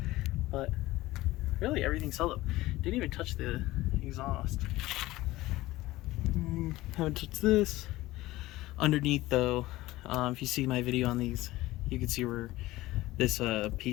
but really everything's held up. Didn't even touch the exhaust. Haven't touched this. Underneath though, if you see my video on these, you can see where this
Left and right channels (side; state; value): right; quieter; 17.8 dB